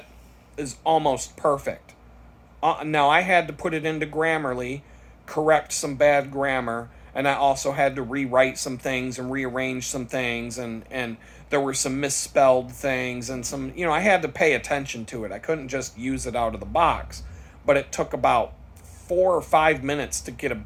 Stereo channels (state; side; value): identical; both; correlation 1.00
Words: is almost perfect. Now, I had to put it into Grammarly, correct some bad grammar, and I also had to rewrite some things and rearrange some things, and there were some misspelled things and some, I had to pay attention to it. I couldn't just use it out of the box, but it took about 4 or 5 minutes to get a